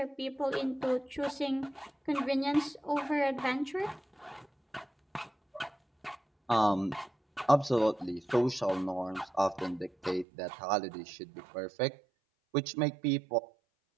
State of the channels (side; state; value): left; drops out; at 10.2 s